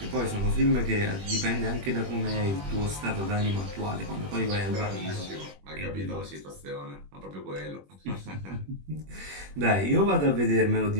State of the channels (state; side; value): late; left; 21 ms